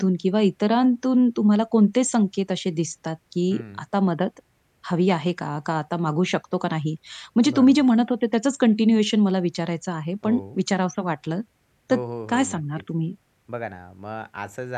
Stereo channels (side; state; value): both; identical; correlation 1.00